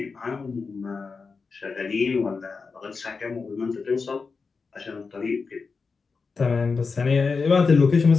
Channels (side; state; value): right; quieter; 4.7 dB